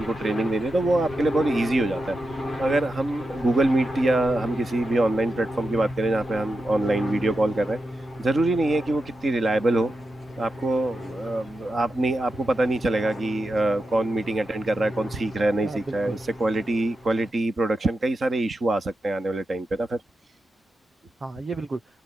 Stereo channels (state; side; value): normal; both; correlation 0.89